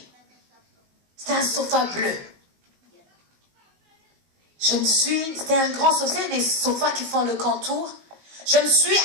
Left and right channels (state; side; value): late; left; 19 ms